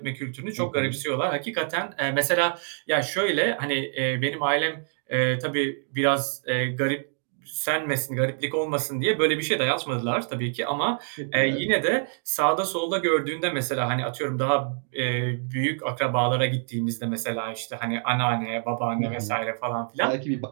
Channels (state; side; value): silent; left; 57 dB below the other